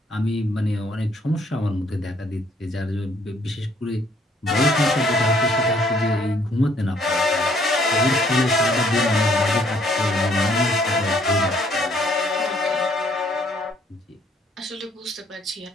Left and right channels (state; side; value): normal; both; correlation 0.65